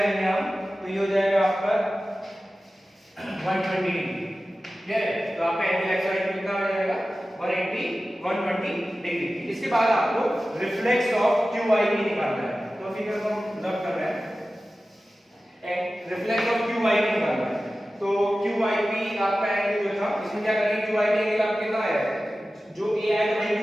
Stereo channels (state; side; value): normal; both; correlation 0.95